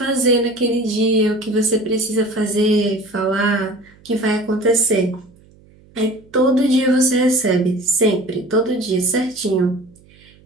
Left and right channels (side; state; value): right; noise; hum, 28 dB below the sound